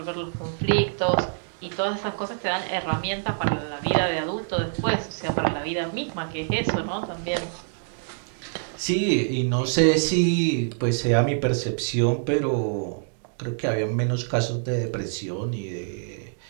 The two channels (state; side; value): silent; left; digital silence